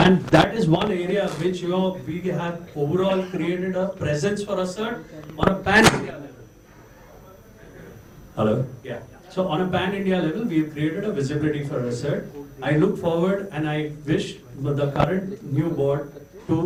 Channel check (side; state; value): both; identical; correlation 1.00